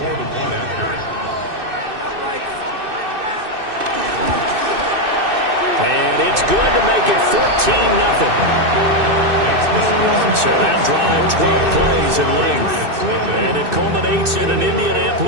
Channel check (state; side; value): late; left; 2.6 ms